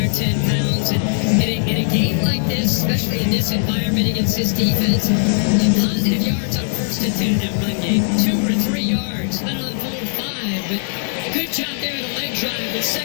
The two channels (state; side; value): silent; right; digital silence